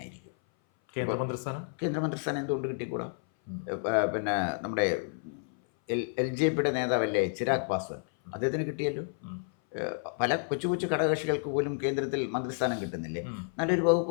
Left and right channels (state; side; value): silent; right; 57 dB below the other